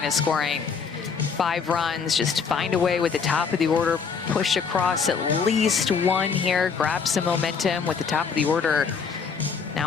scoring 5 runs. Just find a way with the top of the order, push across at least 1 here, grab some momentum with the top of the order.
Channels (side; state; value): right; quieter; 5.9 dB